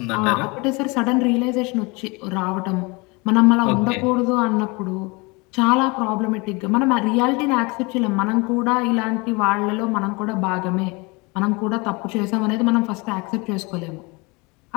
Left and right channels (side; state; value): right; quieter; 27.0 dB